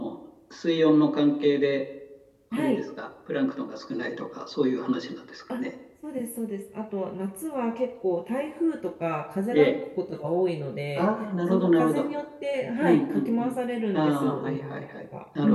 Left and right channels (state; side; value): identical; both; correlation 1.00